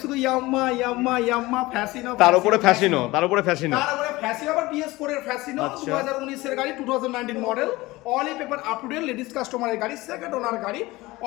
শুধু ইয়ামাহা ফ্যাশিনো, তার উপরে ফ্যাশিনো, তার উপরে ফ্যাশিনো, আবার BS4 এর ফ্যাশিনো, 2019 এর গাড়ি, 2019 model. All paper up to date, ladies কাস্টমারের গাড়ি, সেকেন্ড ওনার গাড়ি।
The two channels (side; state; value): right; quieter; 20.1 dB